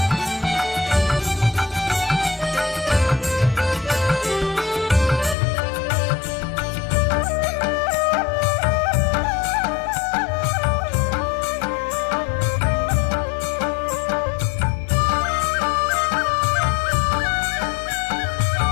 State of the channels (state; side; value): drops out; right; at 5.4 s